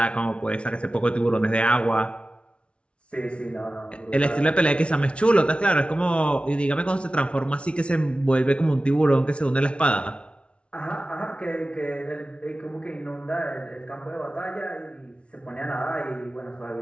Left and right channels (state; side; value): late; right; 0.059 ms